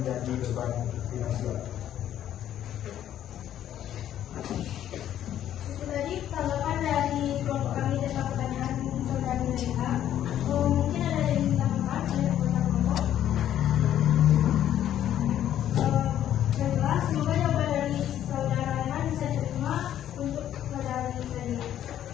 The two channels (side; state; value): right; quieter; 11.1 dB